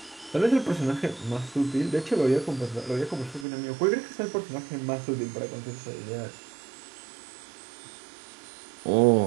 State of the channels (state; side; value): drops out; left; at 3.5 s